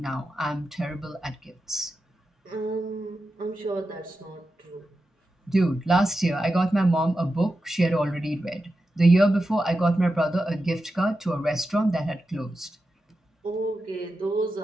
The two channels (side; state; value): both; normal; correlation 0.90